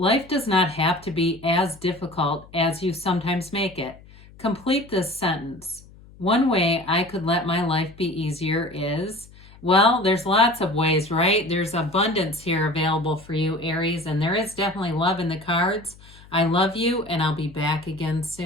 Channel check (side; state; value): left; noise; hum, 23 dB below the sound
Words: does not have to be as difficult as you sometimes make it. Complete this sentence. One way I could let my life be easier is, well, there's lots of ways, right? There's abundance here available for you, Aries, and there is definitely love in the cards. I love you, and I'll be back again